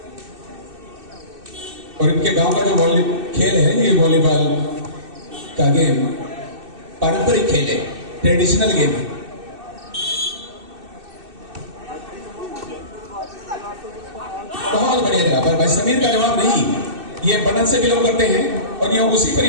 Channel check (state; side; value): late; left; 2.6 ms